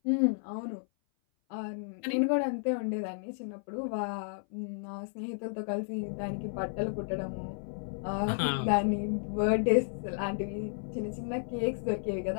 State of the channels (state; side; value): silent; right; 56 dB below the other